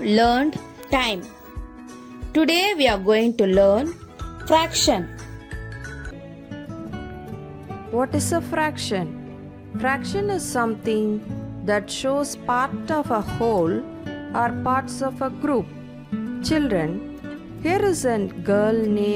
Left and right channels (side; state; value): both; identical; correlation 1.00